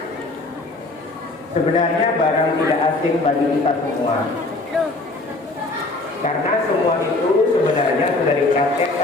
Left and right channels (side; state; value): right; quieter; 3.0 dB